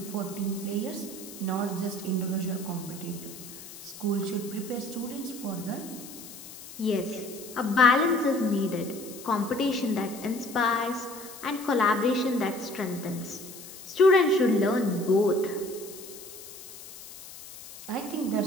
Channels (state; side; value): noise; left; hiss, 15 dB below the sound